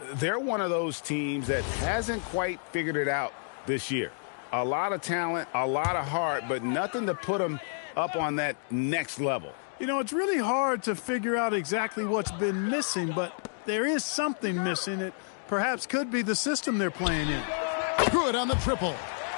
they're one of those teams that hasn't quite figured it out this year. A lot of talent, a lot of heart, but nothing to put them up on that next level. You know, it's really hard to figure out exactly what's been missing, but there is something missing. It perhaps could be the system they're playing in. Good on the triple.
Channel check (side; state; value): right; silent; digital silence